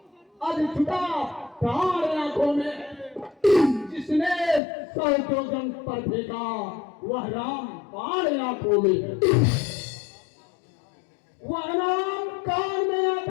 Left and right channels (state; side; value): drops out; right; at 4.6 s